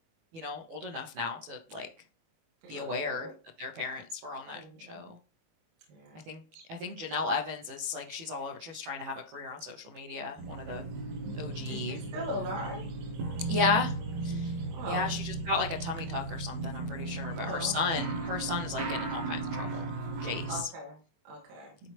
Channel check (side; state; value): left; late; 18 ms